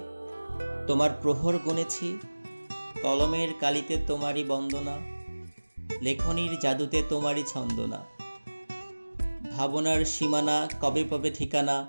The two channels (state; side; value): inverted; both; correlation -1.00